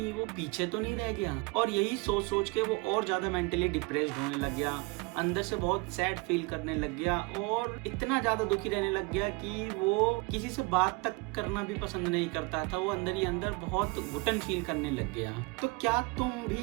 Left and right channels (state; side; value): quieter; left; 26.3 dB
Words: वो पीछे तो नहीं रह गया और यही सोच सोच के वो और ज्यादा मेंटली डिप्रेस्ड होने लग गया, अंदर से बहुत सैड फील करने लग गया और इतना ज्यादा दुखी रहने लग गया कि वो किसी से बात तक करना भी पसंद नहीं करता था। वो अंदर ही अंदर बहुत घुटन फील करने लग गया। तो क्या तुम